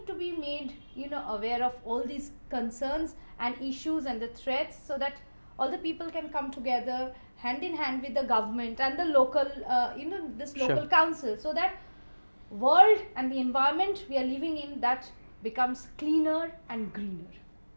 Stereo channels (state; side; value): inverted; both; correlation -1.00